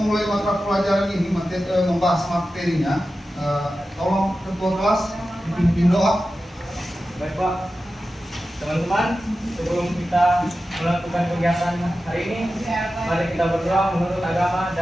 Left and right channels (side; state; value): both; normal; correlation 0.93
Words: mata pelajaran ini, membahas materinya, tolong ketua kelas dipimpin doa. Baik Pak, teman-teman, sebelum kita melakukan kegiatan hari ini, mari kita berdoa menurut agama